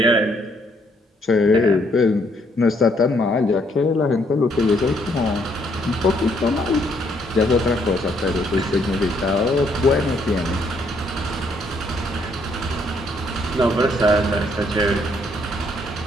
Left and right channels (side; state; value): both; normal; correlation 0.69